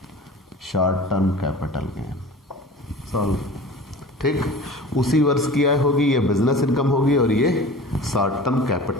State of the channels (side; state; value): both; normal; correlation 0.39